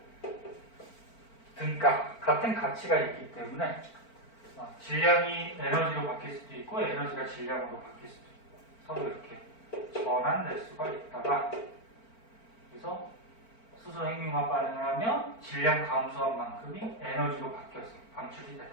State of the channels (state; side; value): late; right; 4.4 ms